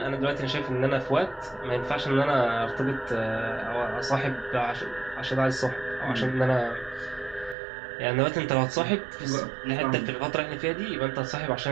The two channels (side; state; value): left; drops out; at 7.6 s